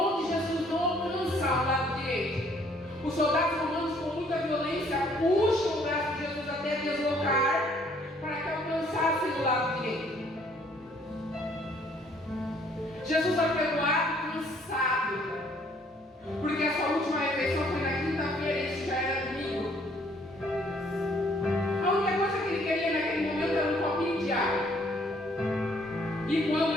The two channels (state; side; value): normal; both; correlation 0.62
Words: de Jesus não alcança o lado direito, os soldados romanos com muita violência puxam o braço de Jesus até deslocar para que alcançasse o lado direito. Jesus apregoado, cansado, porque a sua última refeição foi na quinta-feira e isso já era domingo. A única coisa que ele queria naquele momento era um copinho de água. E